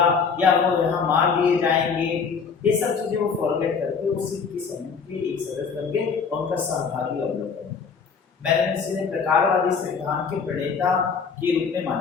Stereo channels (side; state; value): right; quieter; 5.7 dB